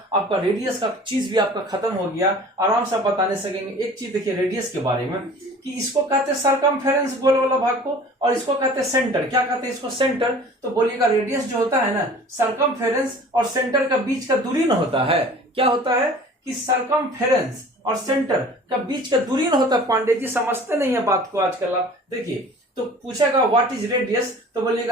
आपका रेडियस का चीज भी आपका खत्म हो गया, आराम से बताने सकेंगे। एक चीज देखिए रेडियस के बारे में कि इसको कहते हैं सरकमफेरेंस, गोल वाला भाग को, और इसको कहते हैं सेंटर। क्या कहते हैं इसको, सेंटर। तो बोलिएगा रेडियस जो होता है ना, सरकमफेरेंस और सेंटर का बीच का दूरी न होता है। क्या होता है कि सरकमफेरेंस और सेंटर का बीच का दूरी न होता। पांडे जी समझते नहीं है बात को आजकल आप देखिए। तो पूछेगा व्हाट इज रेडियस, तो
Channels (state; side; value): normal; both; correlation 0.45